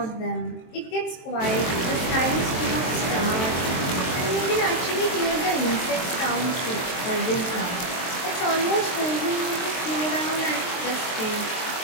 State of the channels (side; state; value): right; late; 23 ms